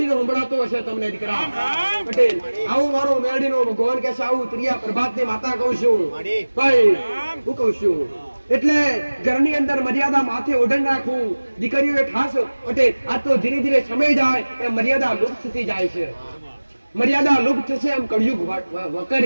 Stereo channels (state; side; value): inverted; both; correlation -1.00